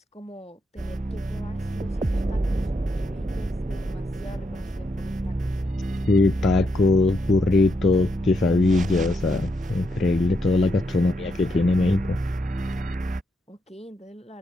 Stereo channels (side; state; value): both; normal; correlation 0.80